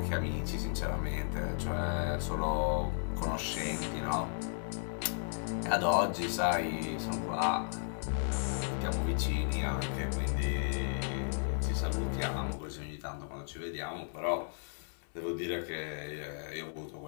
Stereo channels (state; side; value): silent; right; digital silence